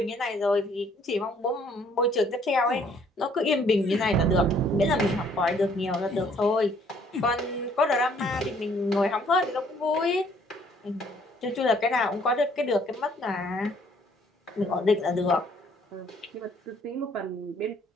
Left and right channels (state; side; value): normal; both; correlation 0.62